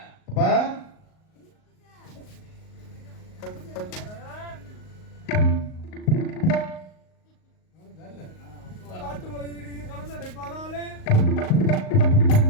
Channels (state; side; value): late; right; 38 ms